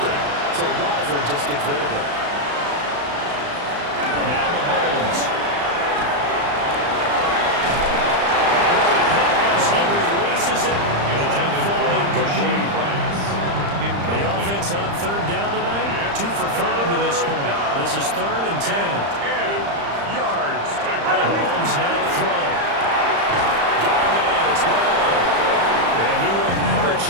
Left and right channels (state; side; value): late; left; 35 ms